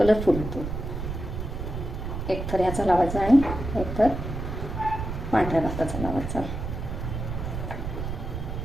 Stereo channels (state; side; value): noise; right; rumble, 5 dB below the sound